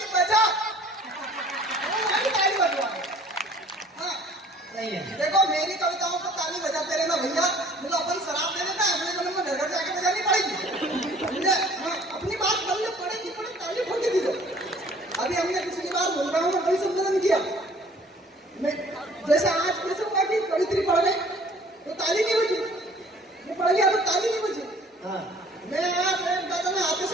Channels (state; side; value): normal; both; correlation 0.53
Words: बजा। ताली बजवा। हाँ सही है। देखो मेरी कविताओं को ताली बजाते रहना भैया, मुझे अपन शराब दे देता है, अगले जन्म में घर जाके बजानी पड़ेगी। हाँ अपनी बात बनने पड़ेगी, ताली ठोकी दीजिए। अभी हमने पिछली बार बोल रहा हूँ कवि सम्मेलन किया, मैं जैसे आज कैसे हुआ कि कवित्री पढ़ गई तो ताली नहीं बजी, मैं पढ़ गया तो ताली नहीं बजी। हाँ मैं दादा ने हाथ